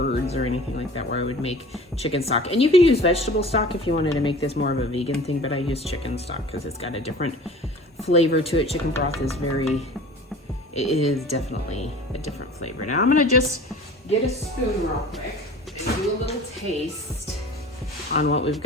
or anything like that where I would make chicken stock. And you could use vegetable stock if you wanted to make this more of a vegan thing, but I use chicken stock because it's got a different flavor to it. Chicken broth is it is definitely a different flavor. Now I'm gonna just get a spoon real quick and do a little taste on what we've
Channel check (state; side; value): normal; both; correlation 0.42